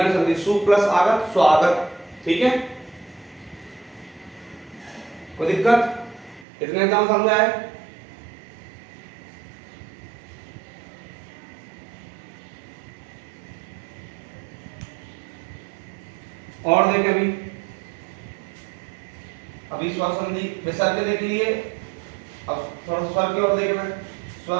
संधि, सु प्लस आगत, स्वागत, ठीक है। कोई दिक्कत, इतने एग्जाम समझ आए। और देखें, अभी स्वर संधि विसर्ग के देख लिए, अब थोड़ा स्वर की ओर देखना है, स्वर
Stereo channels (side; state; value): left; drops out; at 6.5 s